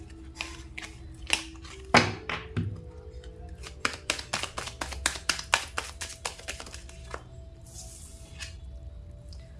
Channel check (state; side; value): identical; both; correlation 1.00